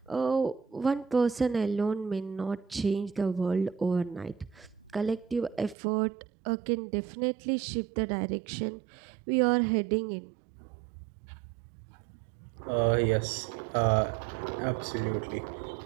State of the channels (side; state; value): left; drops out; at 5.8 s